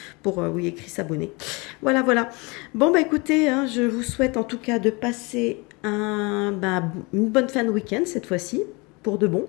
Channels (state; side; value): quieter; right; 27.5 dB